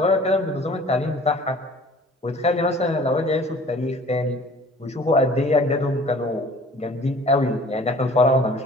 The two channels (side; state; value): both; normal; correlation 0.49